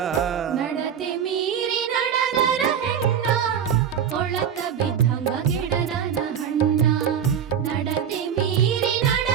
ನಡತೆ ಮೀರಿ ನಡೆದರ ಹೆಣ್ಣ, ಕೊಳಕ ಬಿದ್ದಂಗ ಗಿಡದನ ಹಣ್ಣ. ನಡತೆ ಮೀರಿ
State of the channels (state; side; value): quieter; left; 8.3 dB